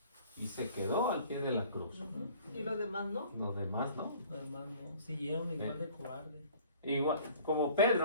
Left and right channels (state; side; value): inverted; both; correlation -0.51